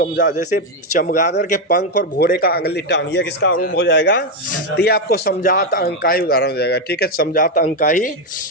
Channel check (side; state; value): both; normal; correlation 0.06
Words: जैसे चमगादड़ के पंख और घोड़े का अगली टांग, ये किसका रूप हो जाएगा? तो ये आपको समजात अंग का ही उदाहरण हो जाएगा, ठीक है। समजात अंग का ही